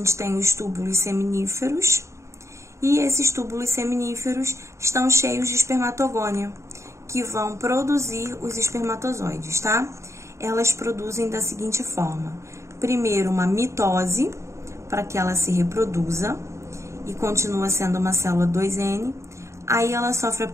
tem os túbulos seminíferos. E esses túbulos seminíferos estão cheios de espermatogônia, que vão produzir os espermatozoides, tá? Elas produzem da seguinte forma: primeiro, uma mitose, para que ela se reproduza, e continua sendo uma célula 2N. Aí ela sofre a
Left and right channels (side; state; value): left; late; 0.14 ms